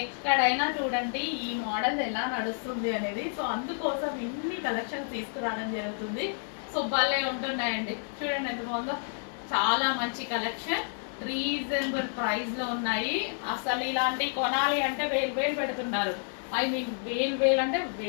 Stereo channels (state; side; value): silent; right; digital silence